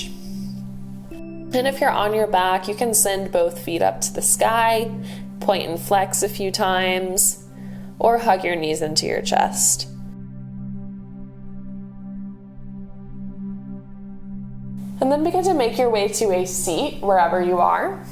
And if you're on your back, you can send both feet up to the sky, point and flex a few times, or hug your knees into your chest. And then begin to make your way to a seat wherever you are.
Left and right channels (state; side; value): identical; both; correlation 1.00